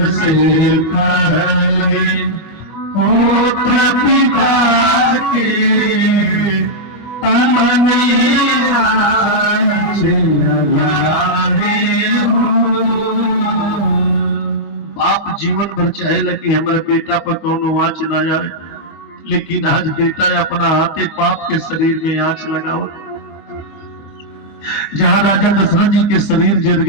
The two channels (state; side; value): late; right; 25 ms